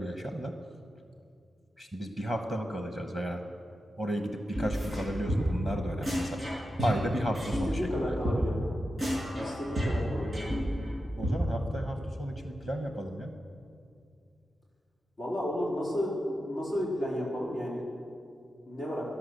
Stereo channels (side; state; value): both; normal; correlation 0.90